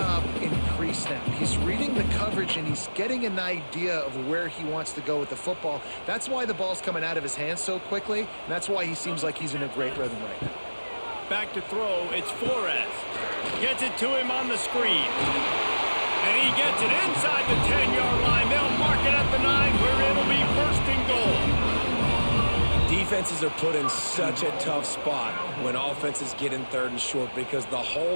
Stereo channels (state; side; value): inverted; both; correlation -1.00